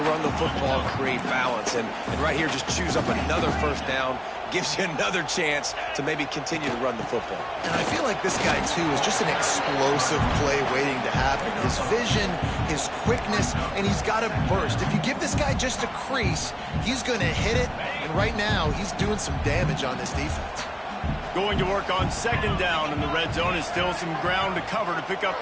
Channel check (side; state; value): both; identical; correlation 1.00